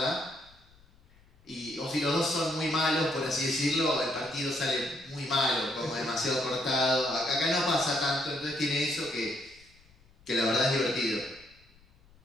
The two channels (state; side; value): noise; left; rumble, 29 dB below the sound